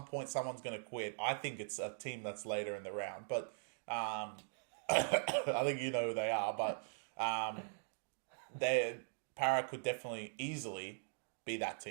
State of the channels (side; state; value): left; silent; digital silence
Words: point, someone's going to quit. I think it's a team that's later in the round, but I think you know who they are, but Para could definitely easily be that